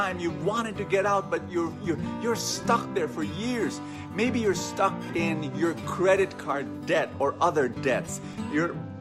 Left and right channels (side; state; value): both; identical; correlation 1.00